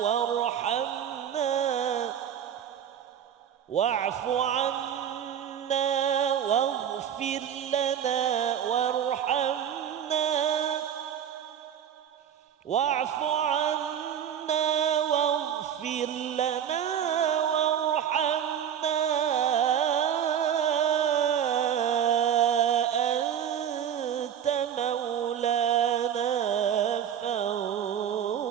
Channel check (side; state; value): left; quieter; 9.2 dB